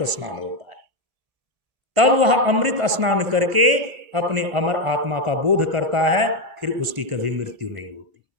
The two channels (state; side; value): late; left; 1.5 ms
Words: स्नान होता है। तब वह अमृत स्नान करके अपने अमर आत्मा का बोध करता है, फिर उसकी कभी मृत्यु नहीं होती।